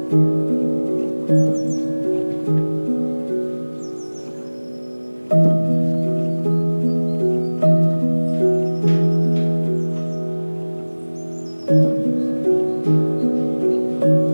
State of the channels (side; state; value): both; inverted; correlation -1.00